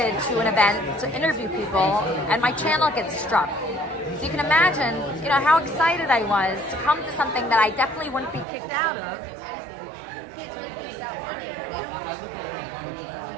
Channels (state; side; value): drops out; left; at 8.5 s